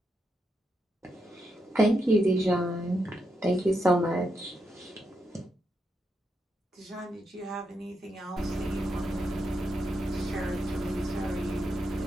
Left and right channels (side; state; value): both; normal; correlation 0.83